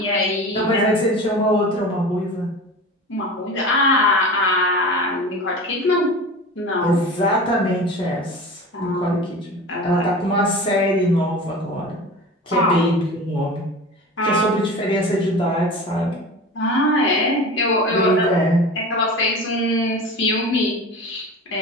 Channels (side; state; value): both; normal; correlation 0.34